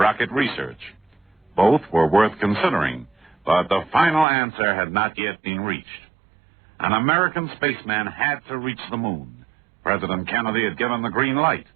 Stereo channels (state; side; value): drops out; left; at 4.2 s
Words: research. Both were worth considering, but the final answer had not yet been reached. An American spaceman had to reach the moon. President Kennedy had given the green light.